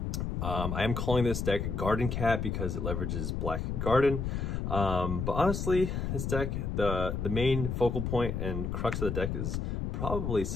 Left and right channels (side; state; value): left; noise; rumble, 2 dB below the sound